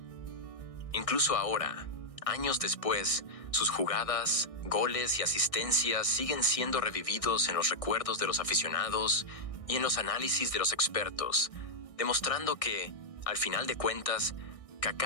Incluso ahora, años después, Sus jugadas, goles y asistencias siguen siendo revividos en los recuerdos de los aficionados y en los análisis de los expertos, demostrando que, al final de cuentas,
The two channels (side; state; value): right; late; 1.6 ms